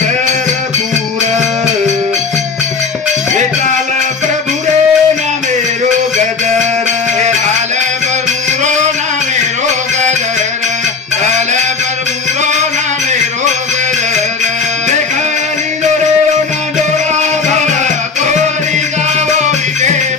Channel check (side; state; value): right; quieter; 4.8 dB